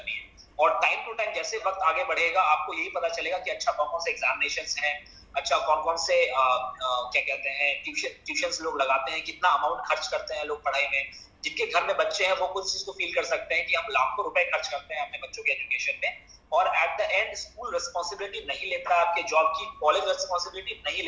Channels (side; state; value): both; identical; correlation 1.00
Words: है और टाइम टू टाइम जैसे वक्त आगे बढ़ेगा आपको यही पता चलेगा कि अच्छा कौन कौन से एग्जामिनेशंस हैं, अच्छा कौन कौन से क्या कहते हैं ट्यूशंस लोग लगाते हैं, कितना अमाउंट खर्च करते हैं लोग पढ़ाई में। जिनके घर में बच्चे हैं वो कुछ चीज को फील कर सकते हैं कि हम लाखों रुपए खर्च करते हैं अपने बच्चों के एजुकेशन में और at the end school responsibility नहीं लेता है आपके जॉब की, कॉलेज रिस्पॉन्सिबिलिटी नहीं